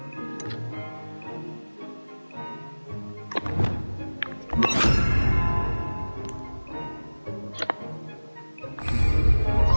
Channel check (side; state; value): both; inverted; correlation -1.00